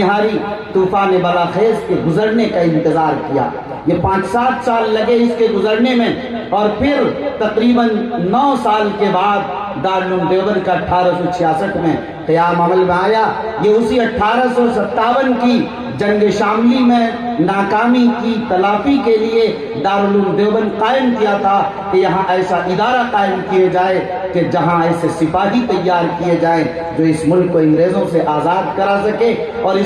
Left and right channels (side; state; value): both; identical; correlation 1.00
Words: ہاری، طوفان بلاخیز کے گزرنے کا انتظار کیا۔ یہ 5-7 سال لگے اس کے گزرنے میں، اور پھر تقریباً 9 سال کے بعد دارالعلوم دیوبند کا 1866 میں قیام عمل میں آیا۔ یہ اسی 1857 کی جنگ شاملی میں ناکامی کی تلافی کے لیے دارالعلوم دیوبند قائم کیا تھا کہ یہاں ایسا ادارہ قائم کیے جائے کہ جہاں ایسے سپاہی تیار کیے جائیں جو اس ملک کو انگریزوں سے آزاد کرا سکے اور